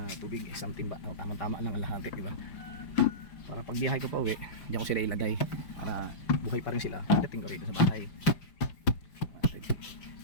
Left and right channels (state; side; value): late; right; 5.3 ms